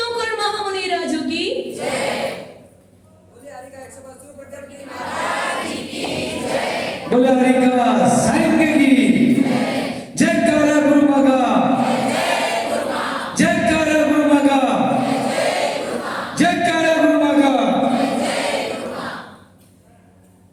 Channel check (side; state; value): both; identical; correlation 1.00